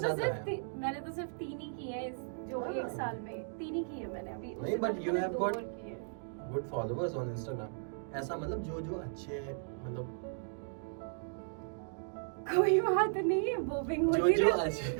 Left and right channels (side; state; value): left; silent; digital silence